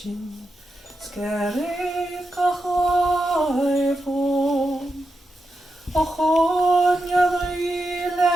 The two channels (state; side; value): normal; both; correlation 0.87